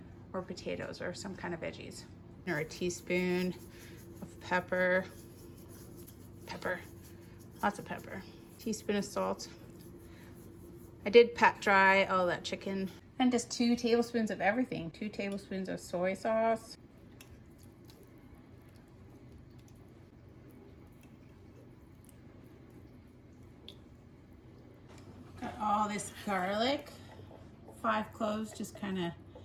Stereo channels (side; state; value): both; identical; correlation 1.00